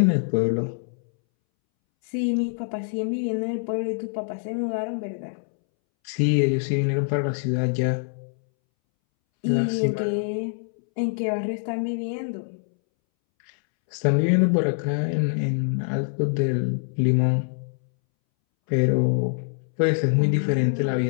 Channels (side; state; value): right; silent; 62 dB below the other